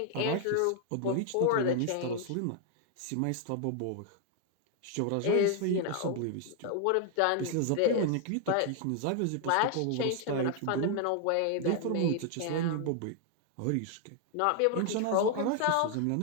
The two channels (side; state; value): both; different; correlation 0.00